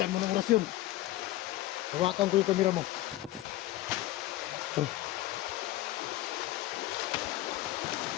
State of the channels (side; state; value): right; quieter; 15.8 dB